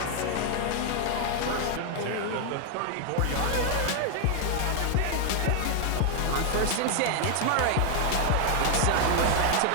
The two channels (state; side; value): different; both; correlation 0.00